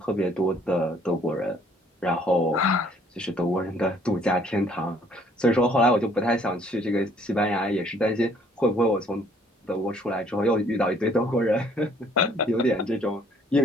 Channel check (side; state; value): both; normal; correlation 0.61